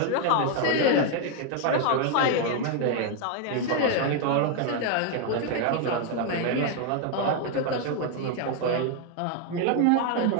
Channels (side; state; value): both; different; correlation 0.01